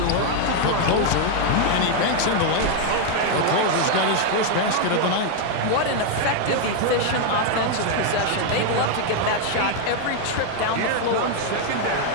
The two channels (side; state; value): both; different; correlation 0.00